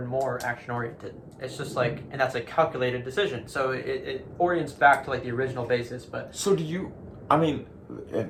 more action-oriented. It's just like, and that's a calculated decision. So it orients back to, like, the original basis, but... So do you, I mean...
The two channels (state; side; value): identical; both; correlation 1.00